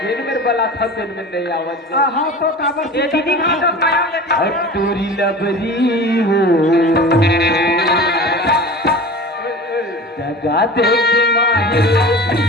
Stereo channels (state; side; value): normal; both; correlation 0.36